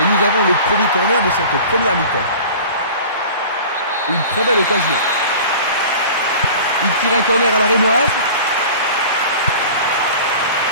nous avons le premier corner de cette première mi-temps. Une très belle occasion. Il tire un corner à la rémoise.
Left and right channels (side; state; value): both; inverted; correlation -0.40